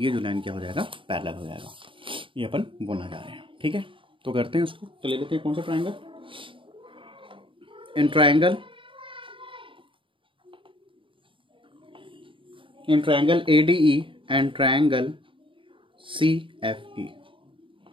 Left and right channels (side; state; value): left; late; 0.25 ms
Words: जो लाइन क्या हो जाएगा पैरेलल हो जाएगा. ये अपन बोलना चाह रहे हैं. ठीक है, तो करते हैं उसको. तो ले लेते हैं कौन सा triangle. In triangle ADE and triangle CFE.